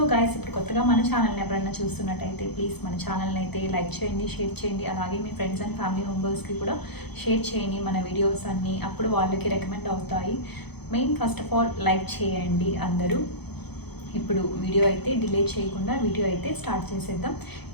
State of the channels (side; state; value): right; late; 0.98 ms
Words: గైస్, ఇప్పుడు కొత్తగా మన ఛానల్ని ఎవరైనా చూస్తున్నట్టయితే ప్లీజ్ మన ఛానల్ని అయితే లైక్ చేయండి, షేర్ చేయండి. అలాగే మీ ఫ్రెండ్స్ అండ్ ఫ్యామిలీ మెంబర్స్కి కూడా షేర్ చేయండి మన వీడియోస్ అన్నీ. అప్పుడు వాళ్ళకి రికమెండ్ అవుతాయి. Main first of all like చేయండి అందరూ. ఇప్పుడు వీడియో అయితే డిలే చేయకుండా వీడియో అయితే స్టార్ట్ చేసేద్దాం.